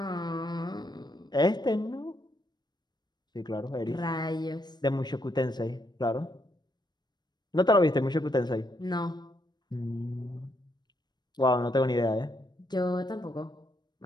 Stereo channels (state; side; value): late; right; 0.21 ms